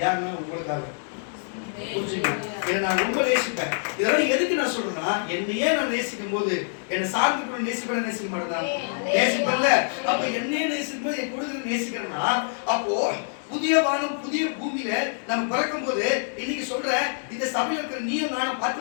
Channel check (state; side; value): silent; right; digital silence